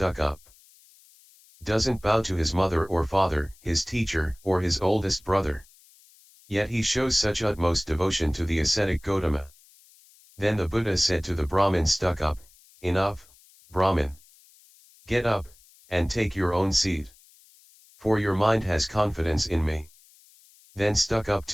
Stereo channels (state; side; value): noise; left; hiss, 28 dB below the sound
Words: doesn't bow to his mother or father, his teacher, or his oldest brother. Yet he shows such utmost devotion to the ascetic Gotama. Then the Buddha said to the Brahmin stuck-up, enough, Brahmin. Get up, and take your own seat. For your mind has confidence in me. Then stuck-up